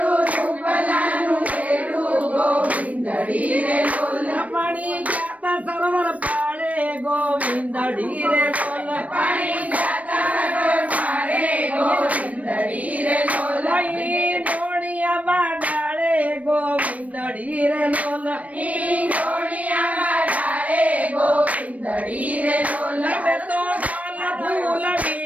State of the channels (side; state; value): left; late; 0.068 ms